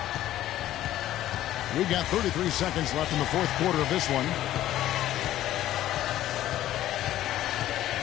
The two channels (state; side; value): quieter; right; 13.4 dB